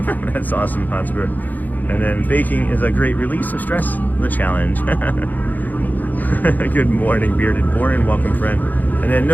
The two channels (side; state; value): right; late; 0.083 ms